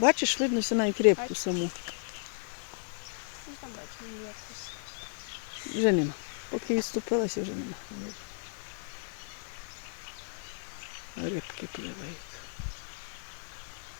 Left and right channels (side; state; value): right; silent; digital silence